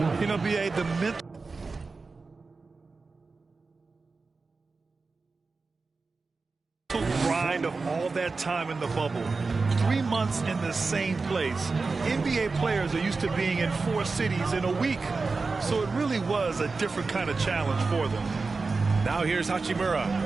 You know, B.A., the mental grind of all that time in the bubble. 3 months in the same place. NBA players are used to being in 4 cities in a week. So it really was a different kind of challenge for them. Now here's Hachimura.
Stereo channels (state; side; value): quieter; left; 4.1 dB